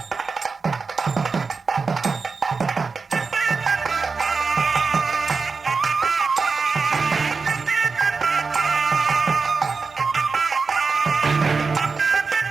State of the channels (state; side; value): quieter; left; 4.7 dB